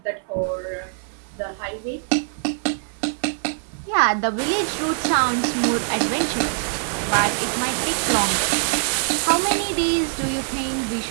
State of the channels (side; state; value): left; silent; 63 dB below the other